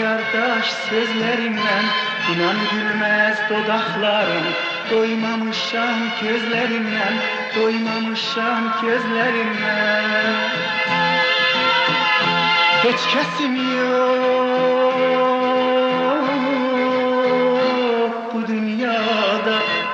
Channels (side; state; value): both; identical; correlation 1.00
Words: daş sözlerimden, inan gülmez dodaklarım. Doymamışam gözlerimden, doymamışam gözlerimden. Hiç kesim yok bu dünyada.